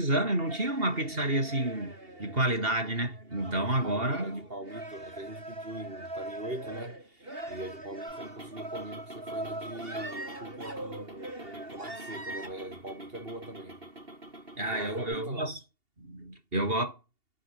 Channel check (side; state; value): left; late; 2.8 ms